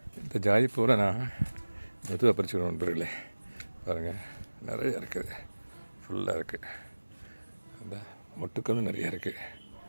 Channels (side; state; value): both; inverted; correlation -1.00